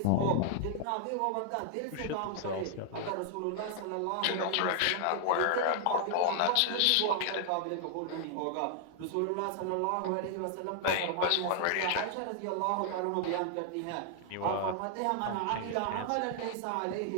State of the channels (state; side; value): different; both; correlation 0.00